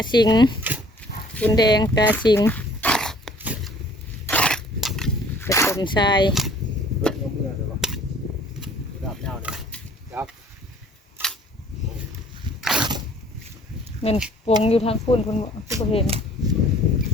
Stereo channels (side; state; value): both; normal; correlation 0.54